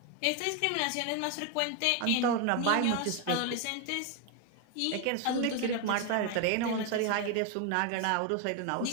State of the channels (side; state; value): both; different; correlation 0.01